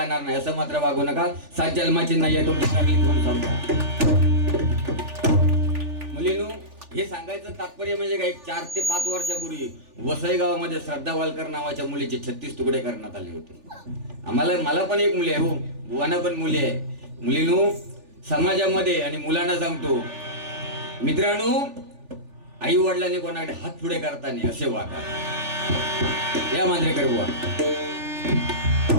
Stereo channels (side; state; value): left; late; 3.4 ms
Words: नाही असं मात्र वागू नका. 7 जन्माची नाही आहे तुमची चांगली कोण समजा. मुलींनो हे सांगायचं तात्पर्य म्हणजे काय, 4 ते 5 वर्षापूर्वी वसई गावामध्ये श्रद्धा वालकर नावाच्या मुलीचे 36 तुकडे करण्यात आले होते. मला पण एक मुली आहे हो, बुवांना पण मुली आहे. मुलींनो समाजामध्ये आणि मुलांना सांगतो मित्रांनो, आई वडिलांनी कोणाकडे हात पुढे करताना असे वागा. या मांजरेकर बुवा.